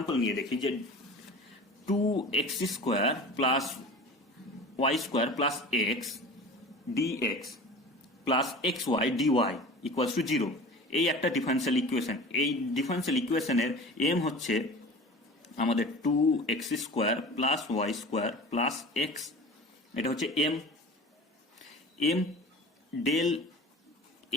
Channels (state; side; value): normal; both; correlation 0.37